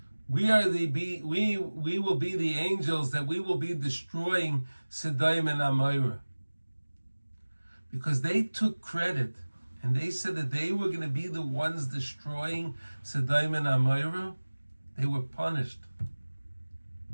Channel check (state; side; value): inverted; both; correlation -1.00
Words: We will be the angels that we will be destroying Sodom and Amorah. Because they took credit and they said that they were going to be the ones destroying Sodom and Amorah. They were punished